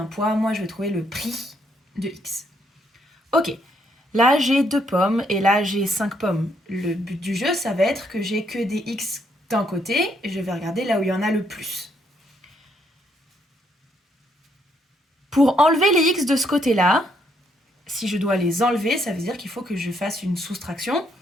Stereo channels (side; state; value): both; normal; correlation 0.73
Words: poids, moi je vais trouver le prix de x. Ok, là j'ai deux pommes, et là j'ai 5 pommes. Le but du jeu, ça va être que j'ai que des x d'un côté, et je vais regarder là où il y en a le plus. Pour enlever les x de ce côté-là, si je dois les enlever, ça veut dire qu'il faut que je fasse une soustraction.